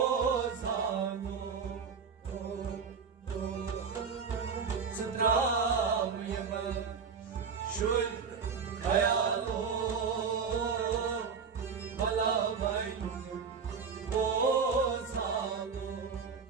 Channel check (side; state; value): left; quieter; 5.9 dB